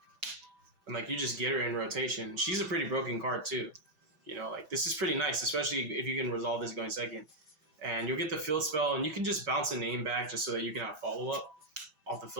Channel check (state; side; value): late; left; 6.2 ms